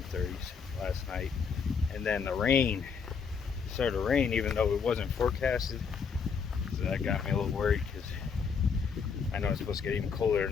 the 30s last night. And then the rain started to rain, even though it wasn't forecasted. So that got me a little worried because I know it's supposed to get even colder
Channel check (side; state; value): right; quieter; 6.0 dB